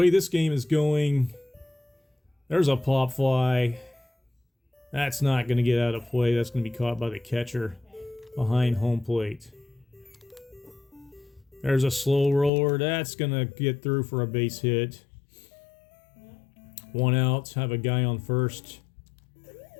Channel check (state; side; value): drops out; right; at 12.5 s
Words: this game is going, there's a pop fly. That's not going to get out of play. That's going to be caught by the catcher behind home plate. There's a slow roller. That's going to get through for a base hit. 1 out. Have a guy on first.